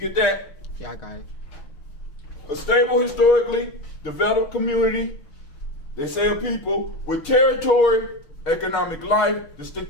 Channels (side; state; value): right; late; 6.2 ms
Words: that? Yeah, I got it. A stable, historically developed community, they say a people, with territory, economic life,